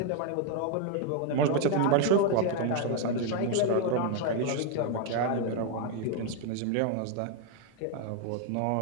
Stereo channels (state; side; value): different; both; correlation 0.00